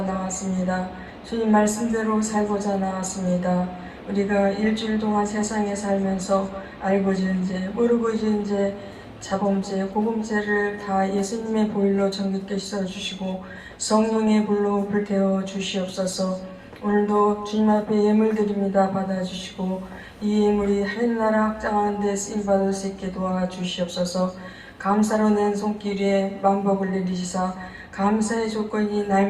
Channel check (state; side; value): identical; both; correlation 1.00